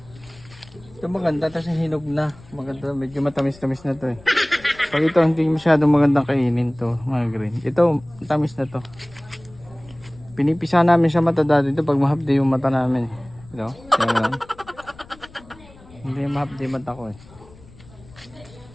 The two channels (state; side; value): noise; left; rumble, 23 dB below the sound